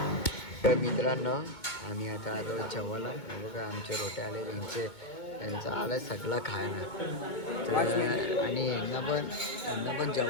तर मित्रांनो आम्ही आता आलो जेवायला बघा आमचे रोटे आले त्यांचा आलाय सगळा खायला तर आणि यांना पण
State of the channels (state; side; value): late; right; 2.2 ms